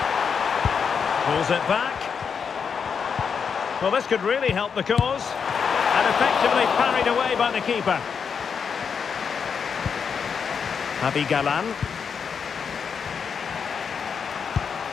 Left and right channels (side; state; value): right; quieter; 6.4 dB